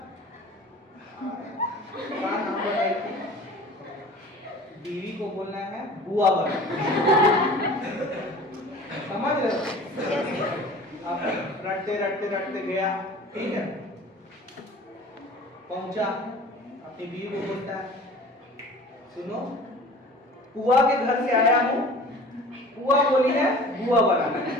बीवी को बोलना है बुआ बनाना, समझ रहे हो? अब रटते रटते रटते गया, ठीक है। पहुंचा, अपनी बीवी को बोलता है सुनो, पुआ के घर से आया हूँ, पुआ बोली है बुआ बनाना,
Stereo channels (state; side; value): normal; both; correlation 0.43